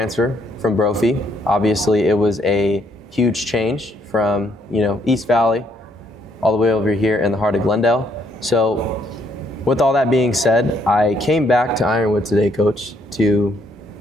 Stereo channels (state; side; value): normal; both; correlation 0.71